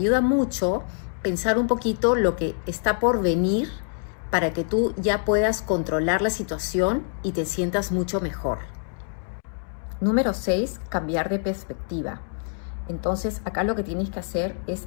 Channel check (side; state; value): right; silent; digital silence